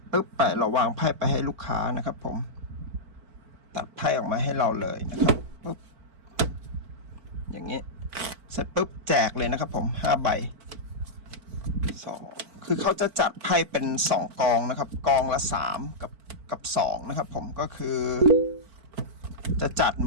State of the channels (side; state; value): left; late; 4.5 ms